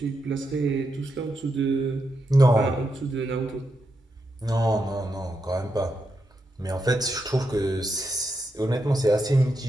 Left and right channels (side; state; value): both; normal; correlation 0.84